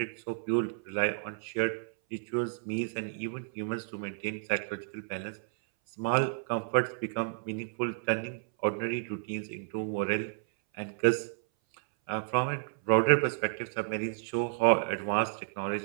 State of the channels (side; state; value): left; silent; 57 dB below the other